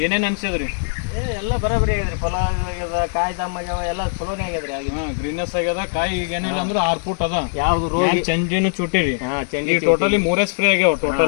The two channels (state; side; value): silent; right; digital silence